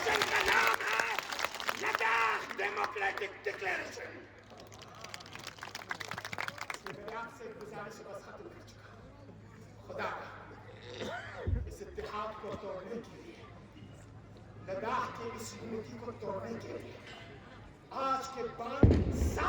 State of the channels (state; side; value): identical; both; correlation 1.00